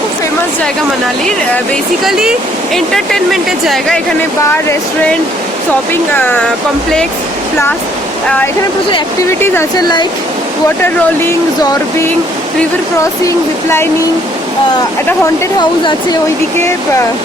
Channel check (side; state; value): both; normal; correlation 0.64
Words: ফেমাস জায়গা মানালির। বেসিক্যালি এন্টারটেনমেন্টের জায়গা। এখানে বার, রেস্টুরেন্ট, শপিং কমপ্লেক্স, প্লাস এখানে প্রচুর অ্যাক্টিভিটিস আছে, like water rolling, zorbing, river crossing, ziplining. একটা হন্টেড হাউস আছে ওইদিকে,